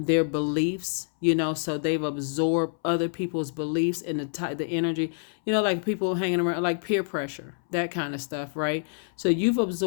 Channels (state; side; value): silent; right; 60 dB below the other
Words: beliefs, so they've absorbed other people's beliefs and the energy, like people hanging around, like peer pressure, that kind of stuff, right? So you've